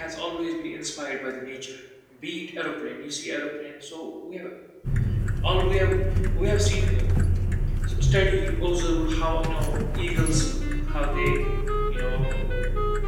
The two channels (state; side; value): identical; both; correlation 1.00